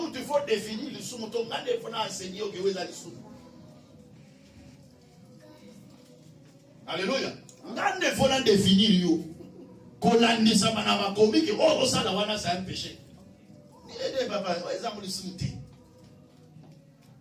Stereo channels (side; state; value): both; identical; correlation 1.00